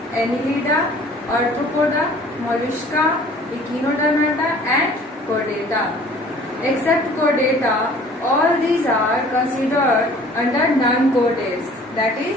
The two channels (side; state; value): both; normal; correlation 0.51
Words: Annelida, Arthropoda, Mollusca, Echinodermata and Chordata. Except Chordata, all these are considered under non-chordates, that